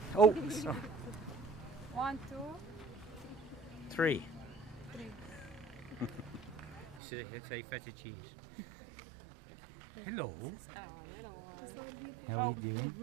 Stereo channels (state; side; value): drops out; left; at 7.0 s